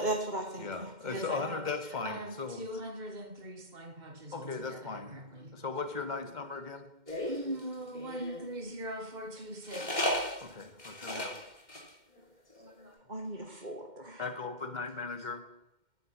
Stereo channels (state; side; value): late; left; 2.1 ms